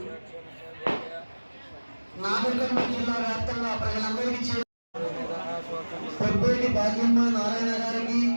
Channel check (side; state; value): both; inverted; correlation -1.00